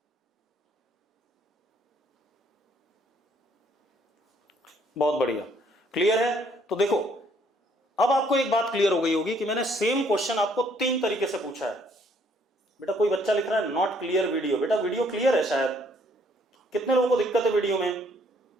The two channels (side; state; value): both; normal; correlation 0.65